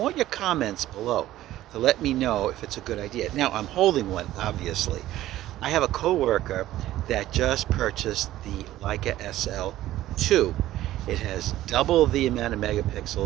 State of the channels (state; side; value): quieter; left; 14.5 dB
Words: your comments below to let me know if it's a good idea. Now, I'm holding one, obviously. I have a coworker that just purchased the Leica SL2. It has double the amount of